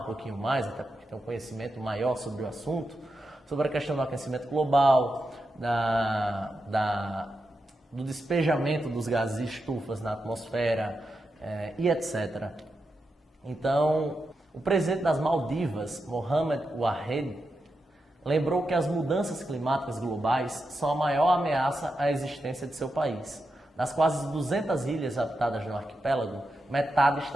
pouquinho mais, até porque tem um conhecimento maior sobre o assunto, sobre a questão do aquecimento global, do despejamento dos gases de estufas na atmosfera e etc. Então, o presidente das Maldivas, Mohamed Wahed, lembrou que as mudanças climáticas globais são a maior ameaça à existência de seu país. Das quase 200 ilhas habitadas no arquipélago, metade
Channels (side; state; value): both; normal; correlation 0.88